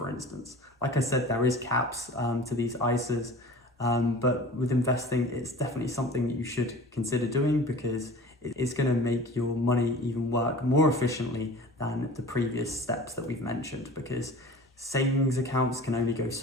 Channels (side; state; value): both; normal; correlation 0.41